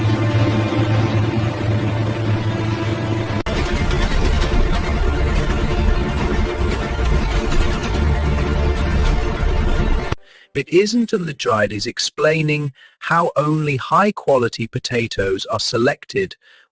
It isn't until the dried is explaining how only high-quality potatoes are selected.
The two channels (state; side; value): identical; both; correlation 1.00